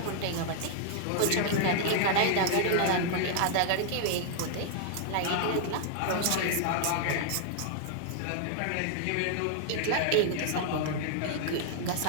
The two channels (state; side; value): different; both; correlation 0.00